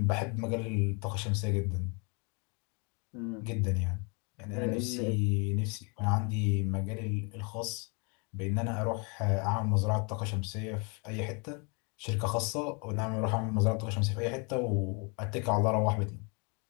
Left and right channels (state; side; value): quieter; right; 33.9 dB